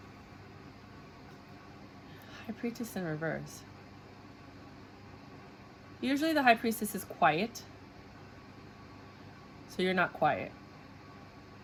High Priestess in reverse. Usually the High Priestess is quiet. So you're not quiet.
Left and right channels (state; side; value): identical; both; correlation 1.00